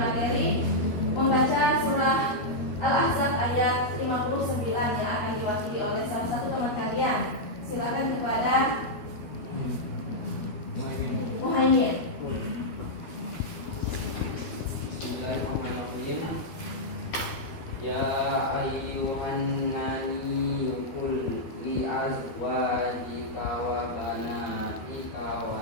membaca surah Al-Ahzab ayat 59 yang akan diwakili oleh salah satu teman kalian. Silakan kepada Muhaimin. Bismillahirrahmanirrahim. Ya ayyuhan nabiyyu qul li azwajika wa banatika wa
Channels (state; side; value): late; right; 13 ms